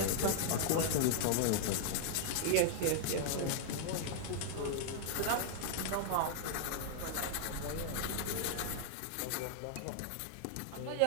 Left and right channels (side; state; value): both; different; correlation -0.01